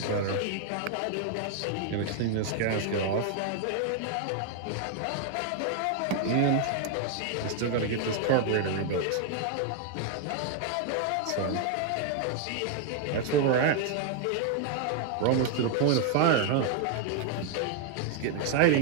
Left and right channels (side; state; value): both; different; correlation 0.00